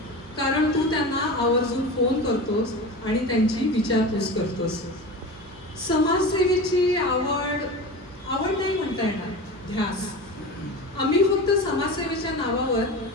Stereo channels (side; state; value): both; normal; correlation 0.30